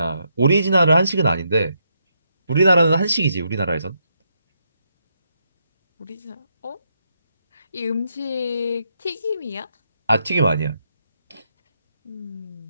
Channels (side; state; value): both; inverted; correlation -0.79